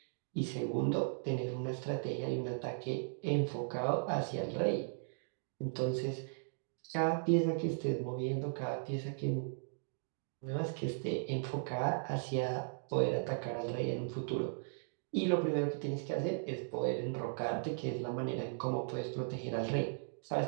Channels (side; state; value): left; silent; digital silence